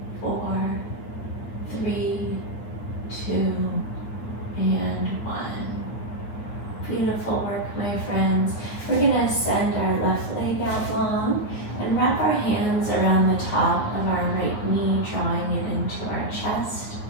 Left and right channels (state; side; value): late; right; 9.0 ms